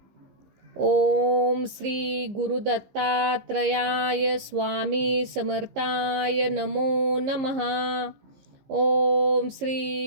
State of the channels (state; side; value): late; left; 15 ms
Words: ओम श्री गुरुदत्तात्रयाय स्वामी समर्थाय नमो नमः. ओम